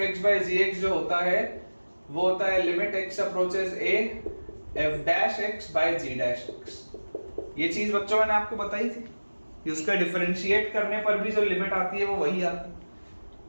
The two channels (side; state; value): both; inverted; correlation -1.00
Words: जो होता है वो होता है limit x approaches a f'(x/g')x। ये चीज बच्चों मैंने आपको बताई थी कि उसका डिफरेंशिएट करने पर भी जो लिमिट आती है वो वही आती है।